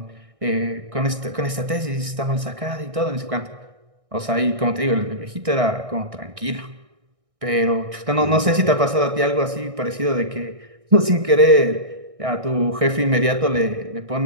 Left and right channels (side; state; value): left; late; 1.6 ms